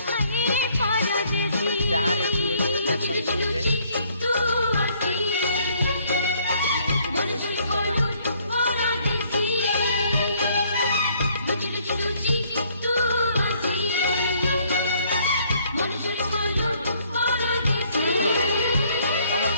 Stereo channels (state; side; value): inverted; both; correlation -0.64